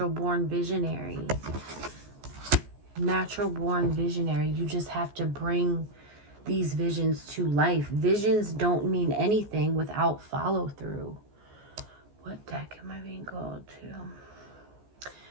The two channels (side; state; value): left; late; 14 ms